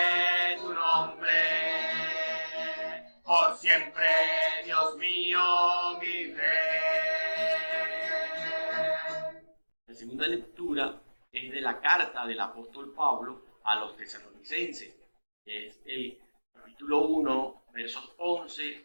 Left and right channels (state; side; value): inverted; both; correlation -1.00